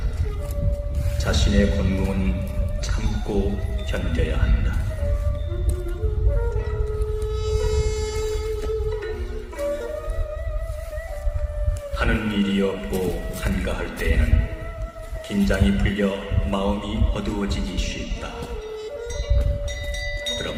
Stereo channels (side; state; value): both; identical; correlation 1.00